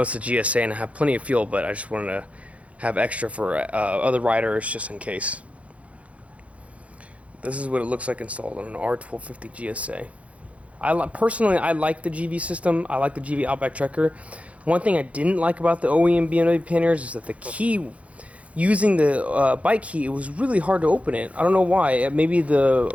a GSA and I have plenty of fuel, but I just wanted to have extra for other riders just in case. This is what it looks like installed on an R1250GSA. Personally, I like the GIVI system. I like the GIVI Outback Trekker. One thing I didn't like about the OEM BMW panniers is that the key, using the bike key, it was really hard to open it. I don't know why. Maybe the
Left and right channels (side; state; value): left; late; 0.064 ms